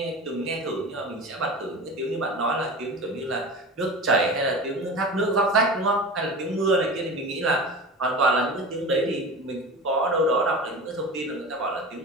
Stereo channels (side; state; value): both; normal; correlation 0.32